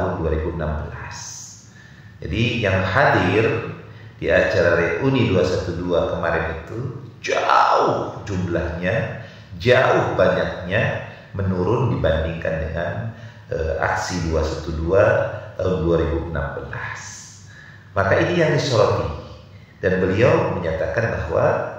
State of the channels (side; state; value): both; identical; correlation 1.00